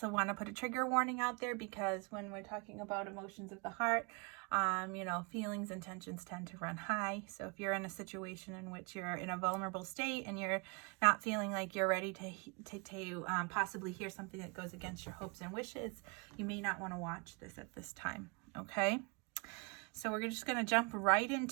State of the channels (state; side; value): quieter; left; 32.0 dB